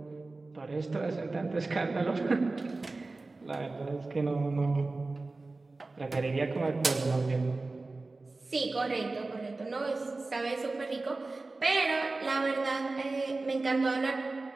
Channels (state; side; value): quieter; left; 3.4 dB